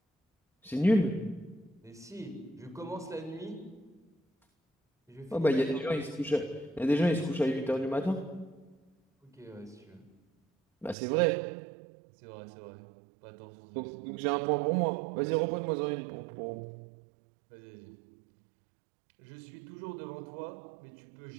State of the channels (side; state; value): left; drops out; at 11.0 s